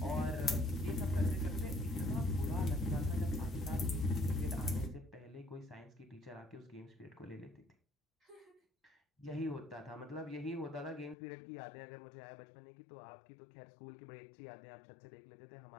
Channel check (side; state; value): right; drops out; at 11.2 s